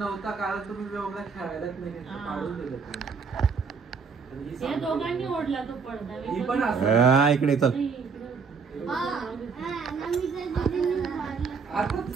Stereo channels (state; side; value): quieter; left; 5.4 dB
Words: कारण तुम्ही व्योमला खेळायलाच नाही घेतलं, हा. काढून दिलं तुम्ही. या दोघांनी ओढला तो पडदा. ही पण असं इकडे चल. आता